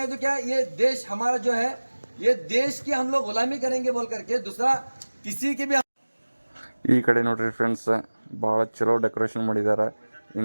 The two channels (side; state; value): both; inverted; correlation -1.00